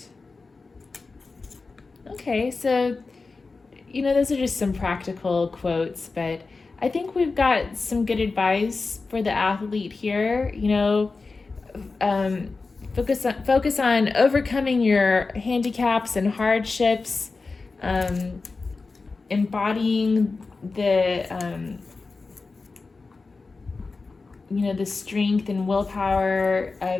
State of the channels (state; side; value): quieter; right; 4.0 dB